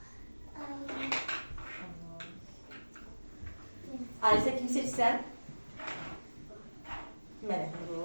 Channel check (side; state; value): both; inverted; correlation -1.00